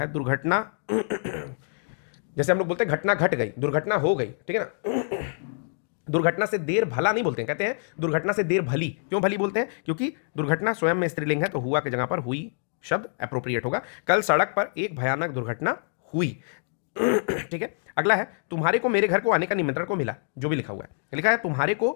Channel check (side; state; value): right; silent; digital silence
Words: दुर्घटना जैसे हम लोग बोलते हैं घटना घट गई, दुर्घटना हो गई, ठीक है ना। दुर्घटना से देर भला नहीं बोलते हैं, कहते हैं दुर्घटना से देर भली। क्यों भली बोलते हैं? क्योंकि दुर्घटना स्वयं में स्त्रीलिंग है, तो हुआ की जगह पर हुई शब्द अप्रोप्रिएट होगा। कल सड़क पर एक भयानक दुर्घटना हुई, ठीक है। अगला है, तुम्हारे को मेरे घर को आने का निमंत्रण को मिला, जो भी लिखा हुआ है, लिखा है तुम्हारे